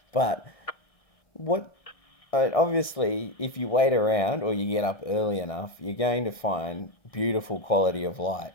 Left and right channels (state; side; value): late; right; 1.6 ms